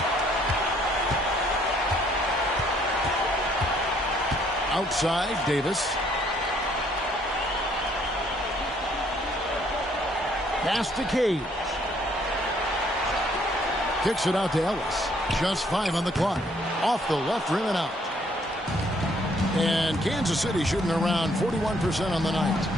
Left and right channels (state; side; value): normal; both; correlation 0.65